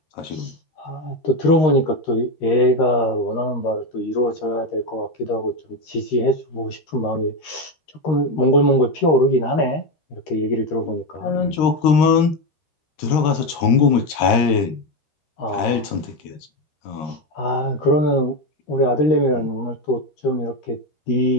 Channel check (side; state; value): right; late; 13 ms